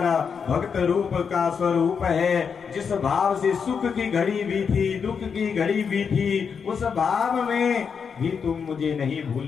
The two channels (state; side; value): quieter; right; 6.3 dB